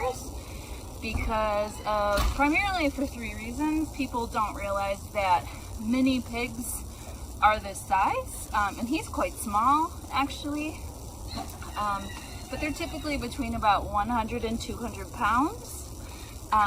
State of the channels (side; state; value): both; identical; correlation 1.00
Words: because of, primarily for 3 reasons. People don't realize that mini pigs are this size, and he's quite small actually, but they're typically between about 100 and 200 pounds.